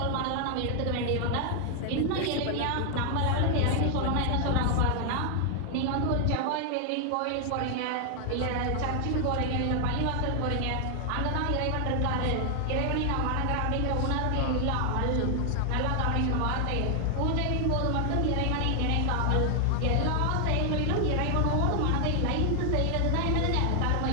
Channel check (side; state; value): both; different; correlation 0.00